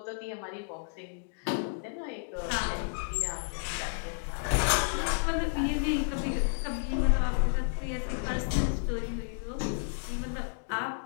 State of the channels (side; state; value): right; silent; digital silence